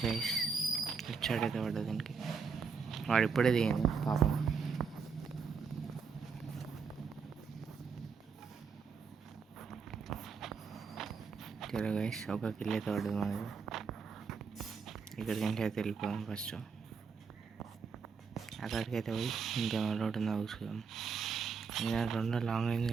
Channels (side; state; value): left; quieter; 5.6 dB